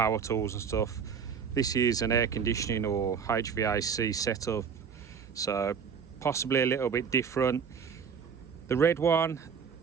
tools and stuff. This is an air conditioning or HVAC setup, so possibly a little bit different. The red one,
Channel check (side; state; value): left; quieter; 6.6 dB